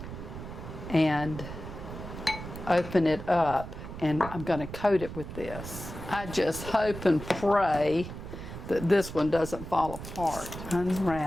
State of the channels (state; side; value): noise; right; rumble, 10 dB below the sound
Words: and open it up, and I'm going to coat it with this. I just hope and pray that this one doesn't fall apart.